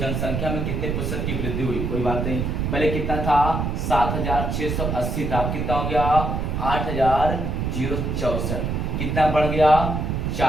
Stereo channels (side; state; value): right; noise; rumble, 1 dB below the sound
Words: में कितने प्रतिशत की वृद्धि हुई? कोई बात नहीं, पहले कितना था 7,680 था, कितना हो गया 8,064, कितना बढ़ गया